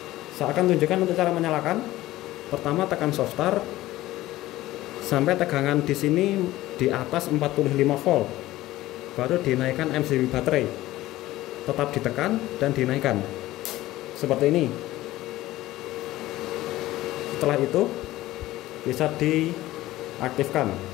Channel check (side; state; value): right; quieter; 16.4 dB